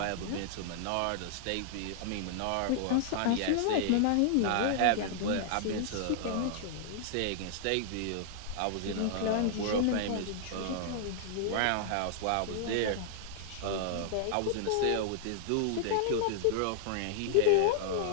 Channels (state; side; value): different; both; correlation -0.01